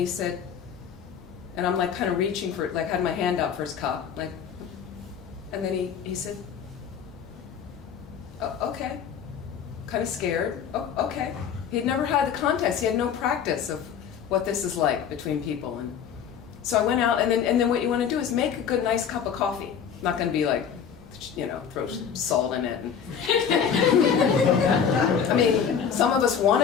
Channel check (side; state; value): right; quieter; 7.6 dB